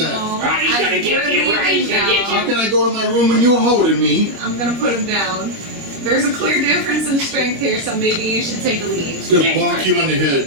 Rotty's gonna get we're you. Rotty's leaving gonna get now. How can I go to my room when you're holding me?" I'm gonna put him down. There's a clear difference in strength here, so maybe you should take a lead. He's gonna bonk you on the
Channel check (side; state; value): left; late; 25 ms